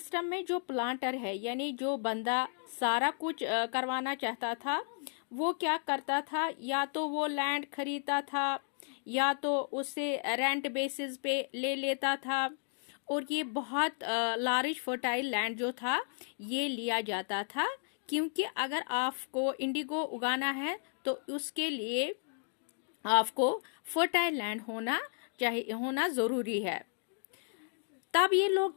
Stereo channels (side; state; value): right; silent; digital silence